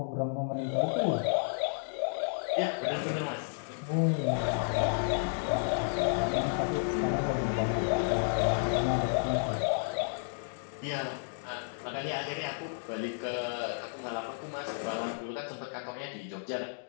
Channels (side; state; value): right; silent; digital silence